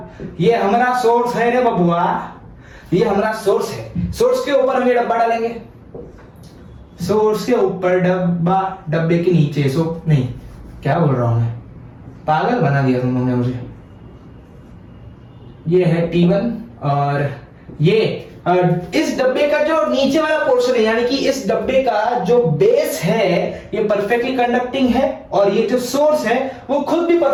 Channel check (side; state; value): both; identical; correlation 1.00